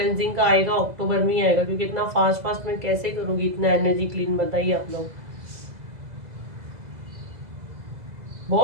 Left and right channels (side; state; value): left; late; 2.0 ms